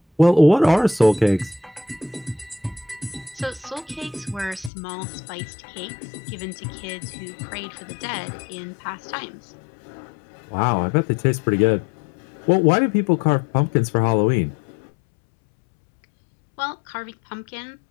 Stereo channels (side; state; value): right; drops out; at 4.7 s